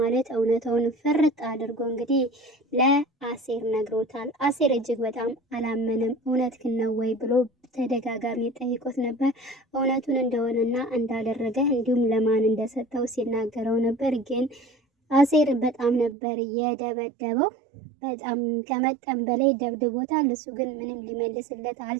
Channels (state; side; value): drops out; left; at 16.2 s